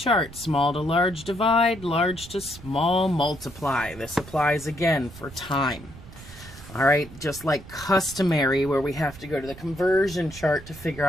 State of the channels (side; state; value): right; noise; rumble, 17 dB below the sound